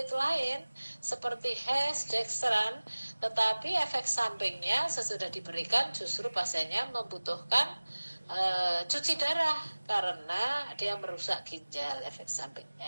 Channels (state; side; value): inverted; both; correlation -1.00